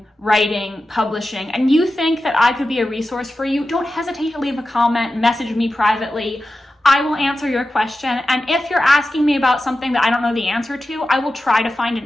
writing, publishing, and you think that I could be a resource for you, don't hesitate to leave a comment, message me privately. I will answer your question. And if you're asking me about something that I don't know the answer to, I will try to find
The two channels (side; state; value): both; normal; correlation 0.93